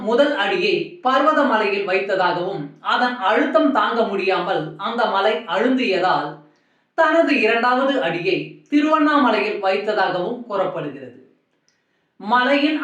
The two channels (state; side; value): identical; both; correlation 1.00